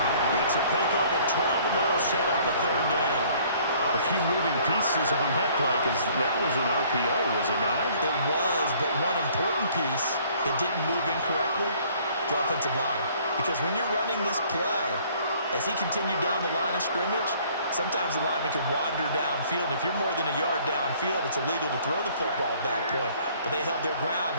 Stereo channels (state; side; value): inverted; both; correlation -0.57